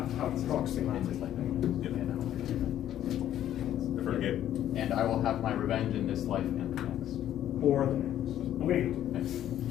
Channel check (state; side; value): quieter; right; 11.6 dB